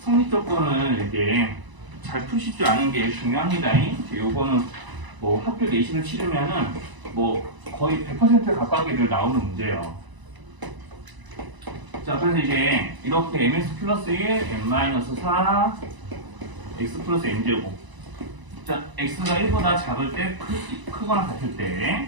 조건을 이제 잘 푸실 줄 아는 게 중요합니다. 이제 요거는 뭐 학교 내신을 치르면은 뭐 거의 100% 가까이들 나오는 문제예요. 자, 그래서 이제 이렇게 mx 플러스 1, n-4, x 플러스 n제곱. 자, x가 1보다 작을 때 크거나 같을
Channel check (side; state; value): left; late; 1.0 ms